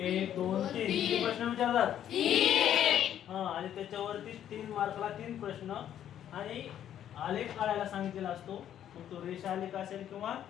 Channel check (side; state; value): right; quieter; 10.5 dB